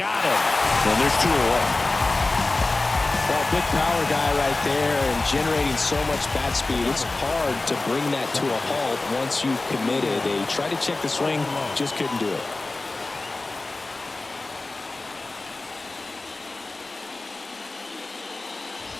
him. And there's 2 away. Well, big power guy right there and generating so much bat speed. It's hard to bring that to a halt once you've committed. They tried to check the swing, just couldn't do it.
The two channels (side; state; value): right; quieter; 3.2 dB